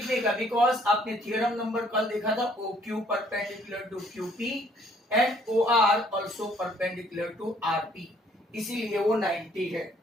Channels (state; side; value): normal; both; correlation 0.63